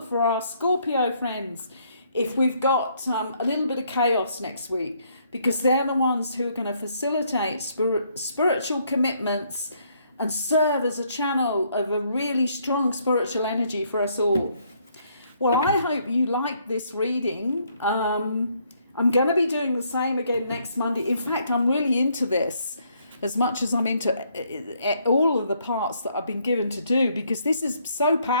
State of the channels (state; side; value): inverted; both; correlation -0.69